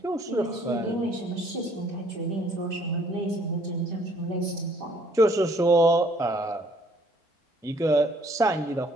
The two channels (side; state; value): both; normal; correlation 0.62